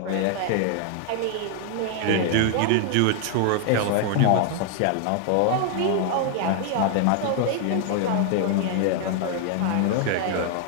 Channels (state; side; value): different; both; correlation 0.00